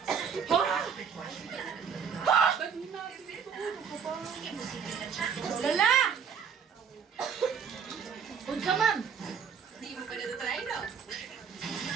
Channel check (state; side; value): quieter; left; 6.8 dB